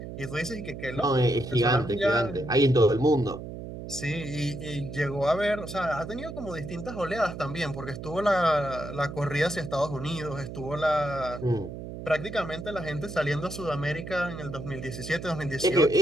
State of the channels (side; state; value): right; noise; hum, 9 dB below the sound